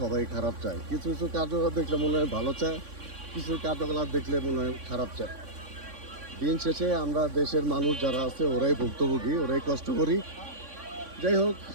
সবাই খারাপ চায়। কিছু কিছু কার্যকলাপ দেখলে মনে হয় ভালো চায়, কিছু কার্যকলাপ দেখলে মনে হয় খারাপ চায়। দিন শেষে আমরা দেশের মানুষ যারা আছে ওরাই ভুক্তভোগী, ওরাই কষ্ট করি। যাই হোক,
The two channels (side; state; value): left; late; 3.5 ms